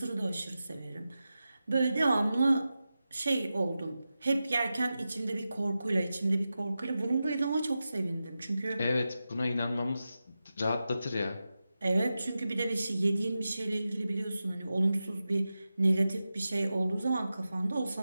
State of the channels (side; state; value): both; inverted; correlation -0.92